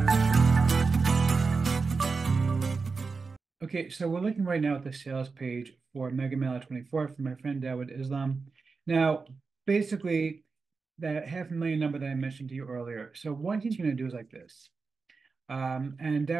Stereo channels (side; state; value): left; quieter; 4.5 dB